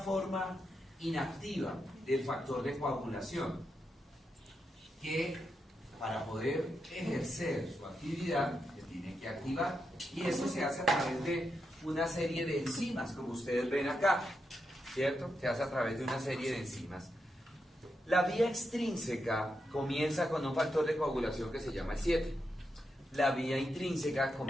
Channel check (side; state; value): both; normal; correlation 0.85